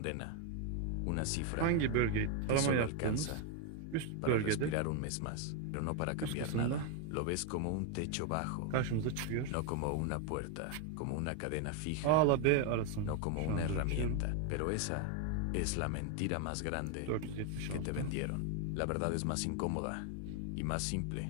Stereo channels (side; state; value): both; different; correlation 0.01